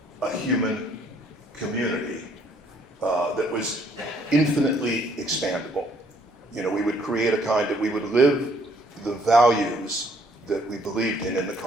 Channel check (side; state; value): both; normal; correlation 0.65